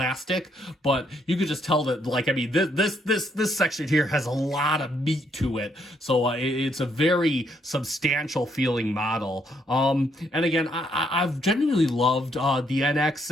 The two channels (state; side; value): normal; both; correlation 0.72